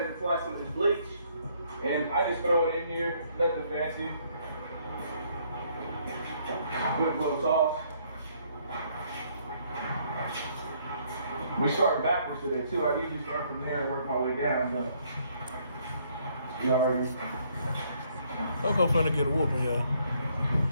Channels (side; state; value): both; inverted; correlation -0.67